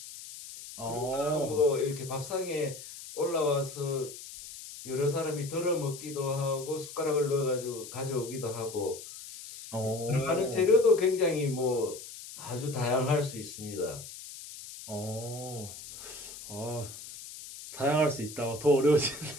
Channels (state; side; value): noise; left; hiss, 13 dB below the sound